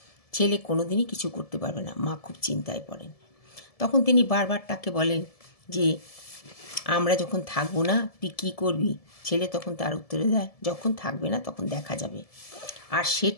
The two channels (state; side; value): late; right; 1.7 ms